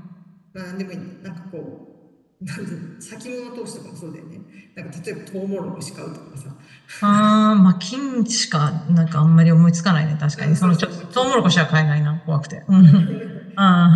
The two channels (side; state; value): both; identical; correlation 1.00